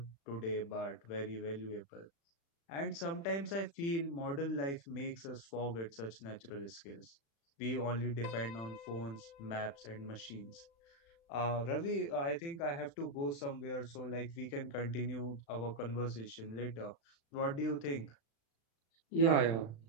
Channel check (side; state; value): right; late; 36 ms